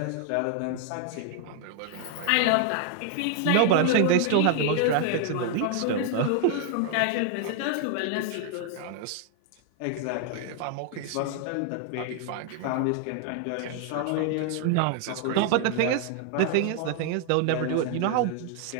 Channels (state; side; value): different; both; correlation 0.00